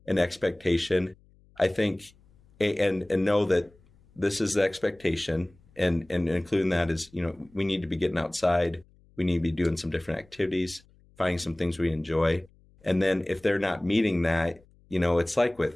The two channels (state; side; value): noise; left; hum, 30 dB below the sound